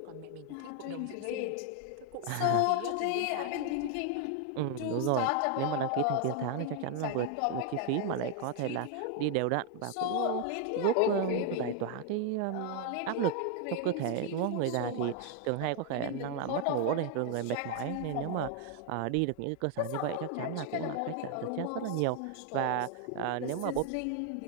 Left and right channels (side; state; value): both; different; correlation 0.00